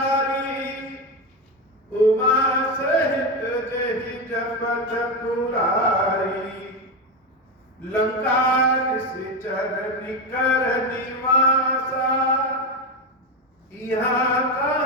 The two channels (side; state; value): both; normal; correlation 0.14